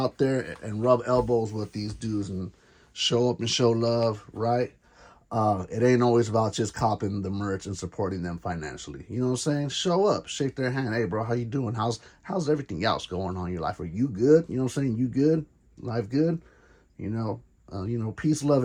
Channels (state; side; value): identical; both; correlation 1.00